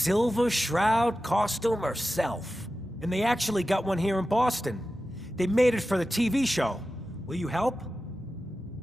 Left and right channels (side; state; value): both; normal; correlation 0.93